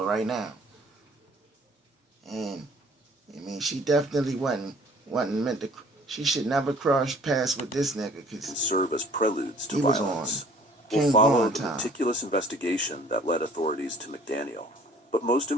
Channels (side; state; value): both; normal; correlation 0.54